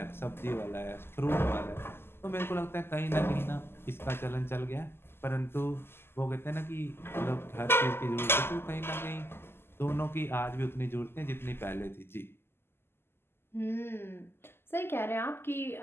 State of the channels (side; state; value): right; late; 0.11 ms